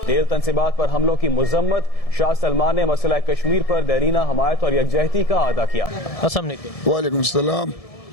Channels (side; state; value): right; late; 1.7 ms